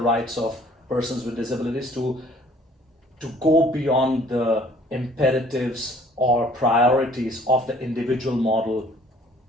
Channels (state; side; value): normal; both; correlation 0.56